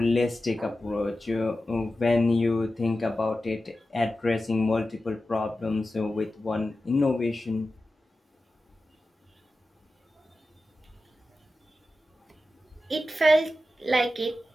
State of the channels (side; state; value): both; normal; correlation 0.93